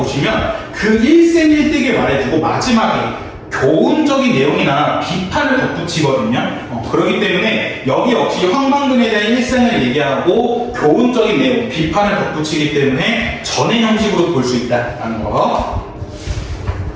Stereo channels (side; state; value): both; identical; correlation 1.00